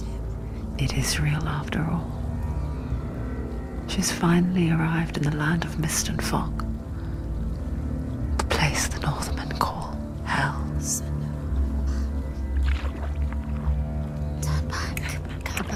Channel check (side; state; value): both; identical; correlation 1.00